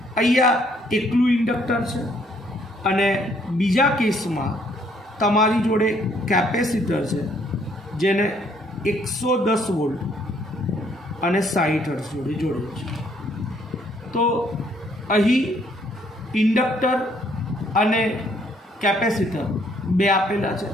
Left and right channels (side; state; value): both; normal; correlation 0.66